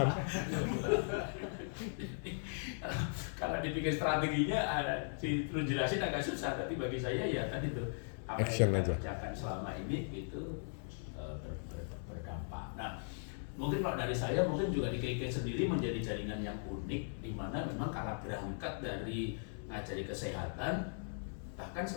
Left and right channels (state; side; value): silent; right; 52 dB below the other